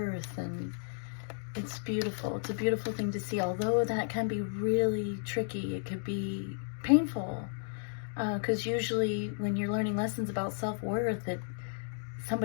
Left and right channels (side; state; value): right; silent; digital silence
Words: and it's beautiful. It's a beautiful thing to see, although that can be really tricky. It could be painful, because usually when you're learning lessons about self-worth,